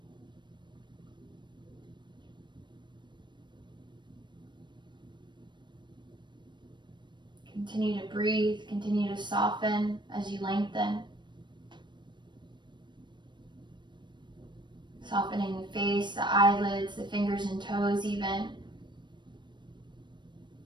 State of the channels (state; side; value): late; left; 0.22 ms